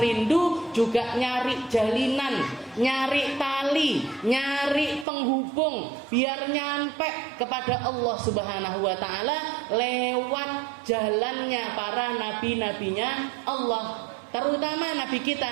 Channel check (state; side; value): drops out; left; at 5.1 s